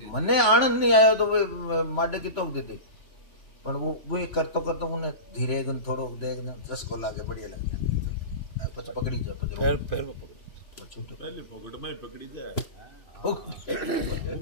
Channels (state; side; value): late; right; 3.4 ms